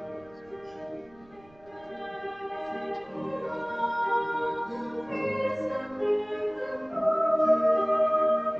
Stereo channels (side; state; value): right; noise; rumble, 28 dB below the sound